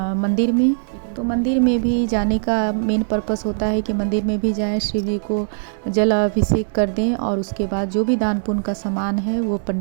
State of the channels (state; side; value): silent; left; digital silence